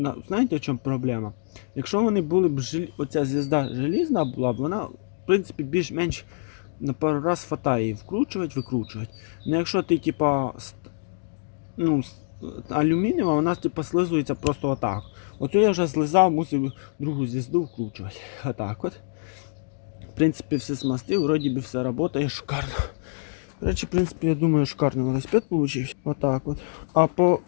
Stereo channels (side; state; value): right; silent; digital silence